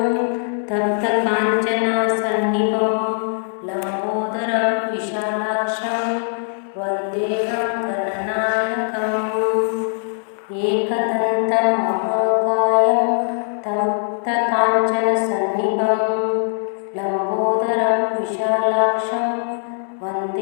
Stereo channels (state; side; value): silent; right; digital silence